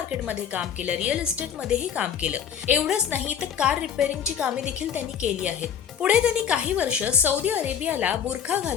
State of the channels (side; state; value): right; quieter; 8.6 dB